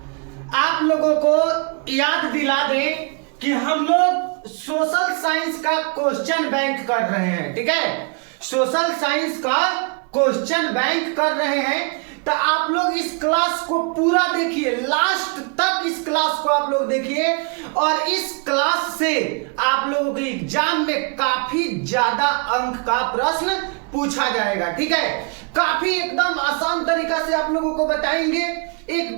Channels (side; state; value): left; quieter; 34.8 dB